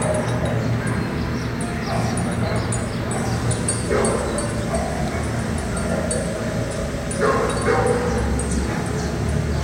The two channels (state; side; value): identical; both; correlation 1.00